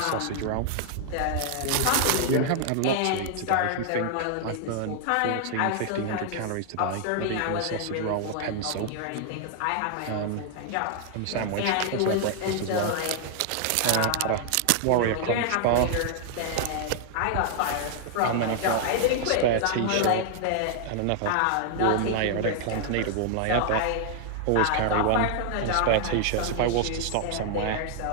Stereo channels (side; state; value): both; different; correlation 0.00